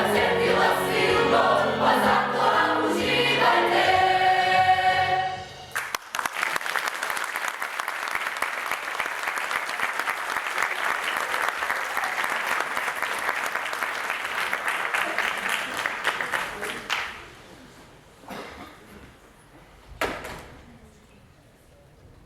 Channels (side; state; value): both; identical; correlation 1.00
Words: cetila silno, pa zato nam uživajte.